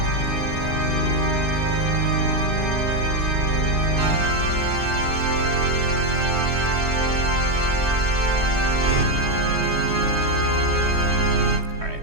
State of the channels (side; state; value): left; late; 3.2 ms